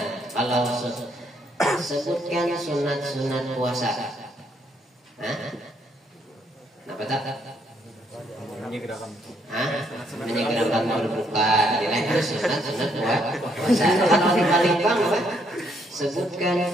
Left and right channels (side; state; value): both; normal; correlation 0.71